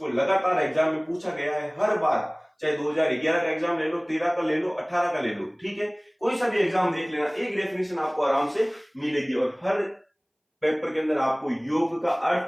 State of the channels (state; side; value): identical; both; correlation 1.00